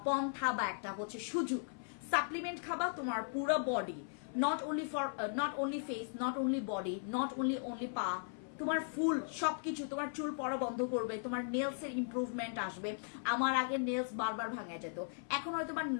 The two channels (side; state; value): right; silent; 53 dB below the other